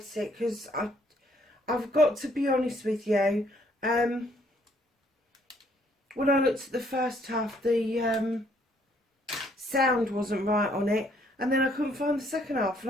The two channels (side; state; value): both; normal; correlation 0.66